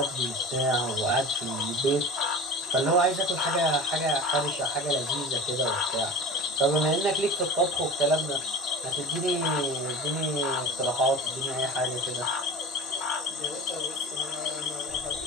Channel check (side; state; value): both; normal; correlation 0.35